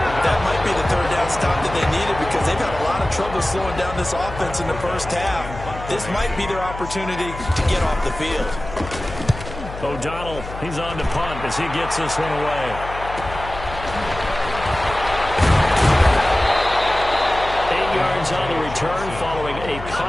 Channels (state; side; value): noise; left; hum, 11 dB below the sound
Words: That might be the 3rd down stop that they needed, because they've had a lot of trouble slowing down this offense in the first half. This might be their opportunity to get off the field. O'Donnell, he's on to punt as he gets this one away. On the return following a